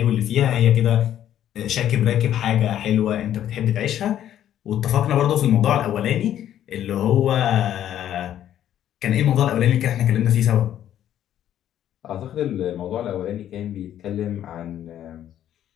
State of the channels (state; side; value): quieter; right; 11.1 dB